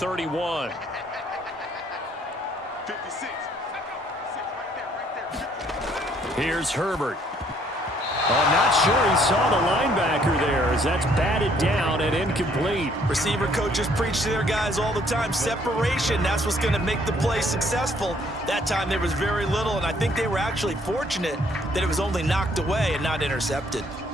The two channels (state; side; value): normal; both; correlation 0.64